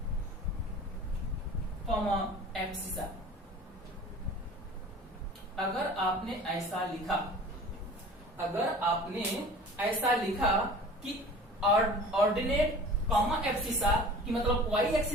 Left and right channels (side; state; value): both; normal; correlation 0.42